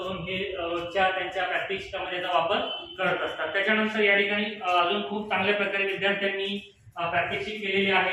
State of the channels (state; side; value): identical; both; correlation 1.00